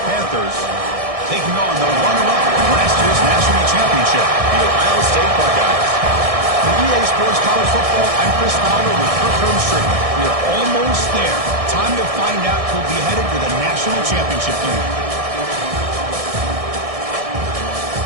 Panthers, taking on the runner-up from last year's national championship, the Ohio State Buckeyes. For EA Sports College Football, I'm Chris Fowler with Kirk Herbstreit. We are almost there. Time to find out who'll be headed to the national championship game.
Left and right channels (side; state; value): left; late; 1.6 ms